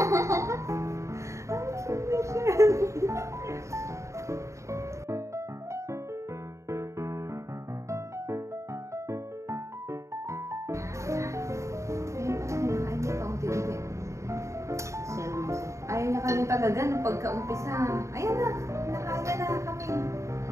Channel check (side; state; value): left; late; 0.14 ms